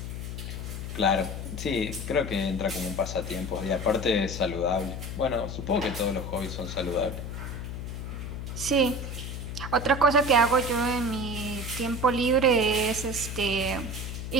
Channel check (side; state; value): left; noise; hum, 6 dB below the sound